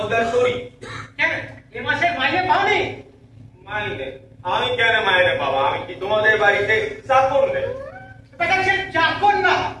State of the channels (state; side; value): identical; both; correlation 1.00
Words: করি? কেন এ মাসে মাইনে পাওনি? মাইনে? আমি কেন মাইনে পাবো? আমি কি তোমাদের বাড়িতে চাকর নেই? সে চাকর না,